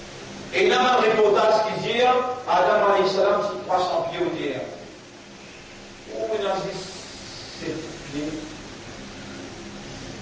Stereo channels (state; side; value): identical; both; correlation 1.00